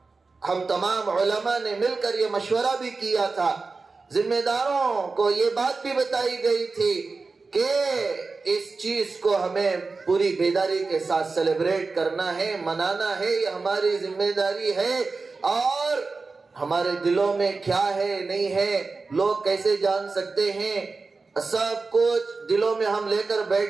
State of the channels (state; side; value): quieter; left; 4.1 dB